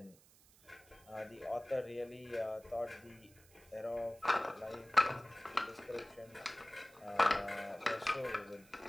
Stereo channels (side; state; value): right; noise; hiss, 26 dB below the sound